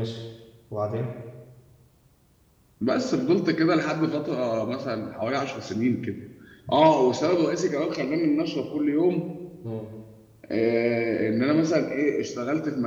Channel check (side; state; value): both; identical; correlation 1.00